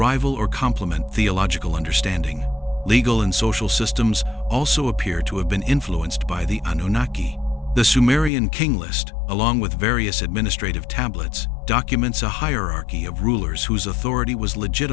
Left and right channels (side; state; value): right; drops out; at 8.3 s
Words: or complement theological understanding. Legal and social systems also appear to have been influenced by the Anunnaki. The Sumerian king list, along with various administrative tablets, documents a hierarchy of rulers whose authority was